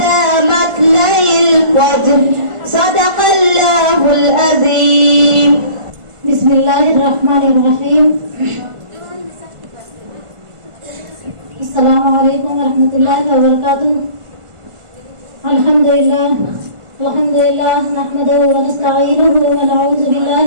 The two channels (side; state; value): left; late; 1.5 ms